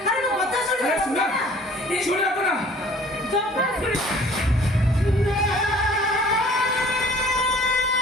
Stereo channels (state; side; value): normal; both; correlation 0.52